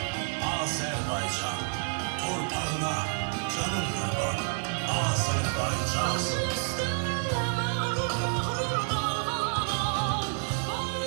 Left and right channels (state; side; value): silent; left; 58 dB below the other